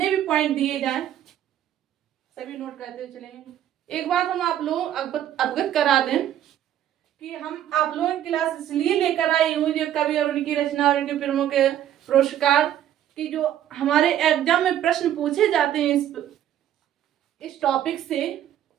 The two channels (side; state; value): left; quieter; 11.3 dB